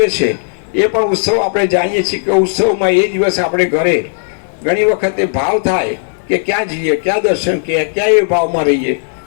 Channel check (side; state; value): right; silent; digital silence